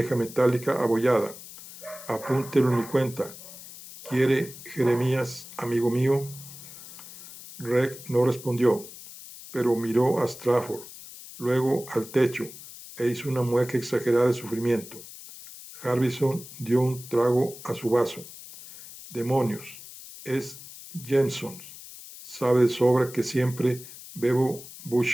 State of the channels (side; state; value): left; noise; hiss, 15 dB below the sound